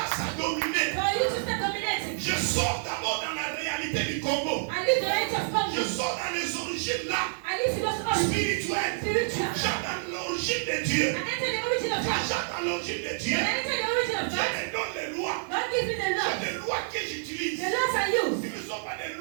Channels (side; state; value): left; silent; digital silence